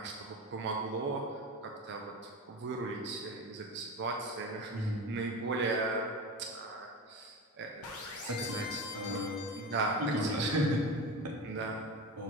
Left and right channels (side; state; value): both; normal; correlation 0.26